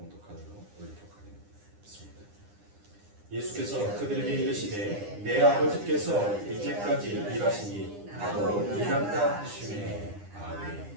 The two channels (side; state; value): left; late; 9.9 ms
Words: 올리도록 하겠습니다. 예수께서 그들에게 이르시되 내 아버지께서 이제까지 일하시니 나도 일한다 하시매.